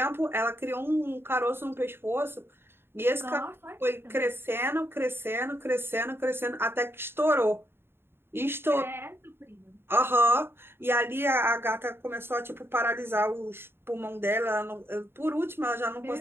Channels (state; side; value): late; left; 0.11 ms